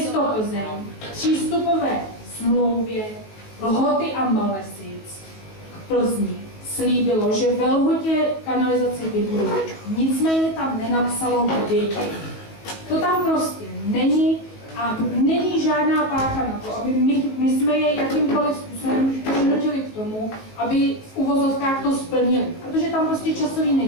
Plzeň v přístupové smlouvě Lhoty a Malesic k Plzni slíbilo, že ve Lhotě kanalizaci vybudou. Nicméně tam nenapsalo kdy. To tam prostě není a není žádná páka na to, aby my jsme je jakýmkoliv způsobem přinutili k tomu, aby v uvozovkách to splnili, protože tam prostě časový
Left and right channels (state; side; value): late; right; 19 ms